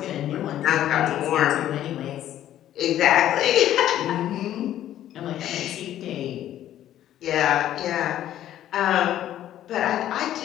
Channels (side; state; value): right; quieter; 12.1 dB